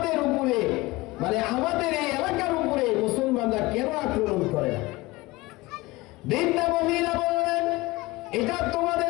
উপরে, মানে আমাদের এই এলাকার উপরে মুসলমানরা কেন আক্রমণ করে না? বৃদ্ধা মহিলা বললেন, এটা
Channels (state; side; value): quieter; right; 21.3 dB